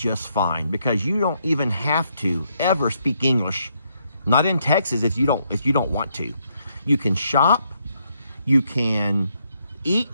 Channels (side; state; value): both; inverted; correlation -0.75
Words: fine because you don't even have to ever speak English. Not in Texas if you don't want to. You can shop, you can